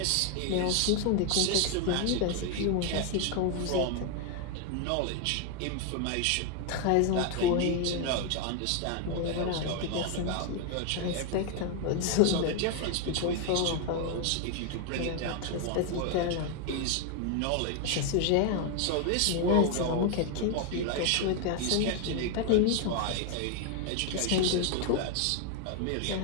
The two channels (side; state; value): both; different; correlation 0.01